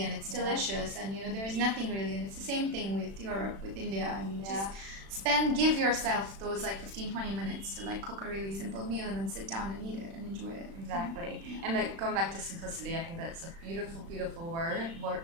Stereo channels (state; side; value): late; left; 36 ms